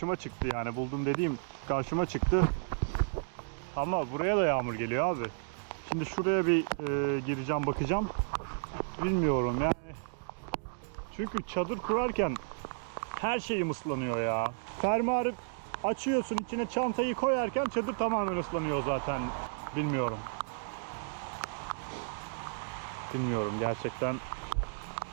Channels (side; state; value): left; silent; digital silence